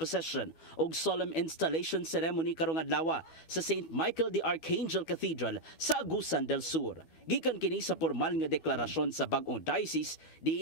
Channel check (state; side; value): late; right; 12 ms